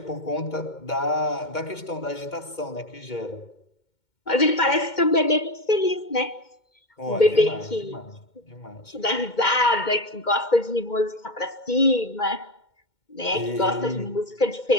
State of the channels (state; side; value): late; right; 2.2 ms